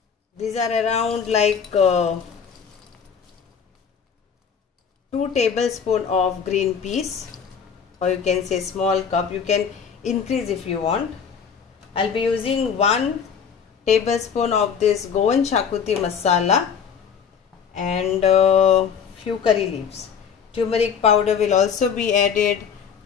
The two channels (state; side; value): quieter; right; 6.9 dB